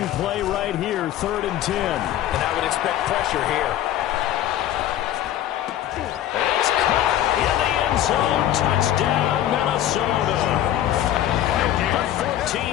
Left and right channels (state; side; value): quieter; right; 12.1 dB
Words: play right here, 3rd and 10. And I would expect pressure here. It's caught in the end zone. Touchdown, Minnesota. A